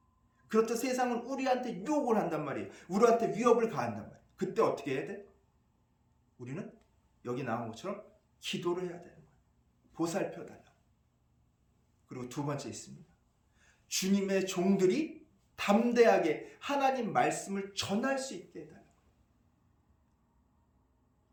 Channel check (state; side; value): identical; both; correlation 1.00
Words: 그렇듯 세상은 우리한테 유혹을 한단 말이에요. 우리한테 위협을 가한단 말이에요. 그때 어떻게 해야 돼? 우리는 여기 나온 것처럼 기도를 해야 되는 거예요. 보살펴 달라고. 그리고 두 번째 있습니다. 주님의 종들이 담대하게 하나님 말씀을 전할 수 있게 해달라고.